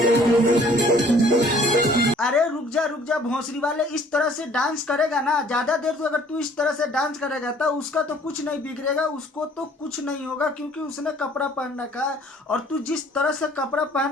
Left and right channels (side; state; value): both; normal; correlation 0.56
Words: अरे रुक जा भोंसरी वाले, इस तरह से डांस करेगा ना ज्यादा देर, तो अगर तू इस तरह से डांस करेगा तो उसका तो कुछ नहीं बिगड़ेगा, उसको तो कुछ नहीं होगा क्योंकि उसने कपड़ा पहन रखा है। और तू जिस तरह से कपड़ा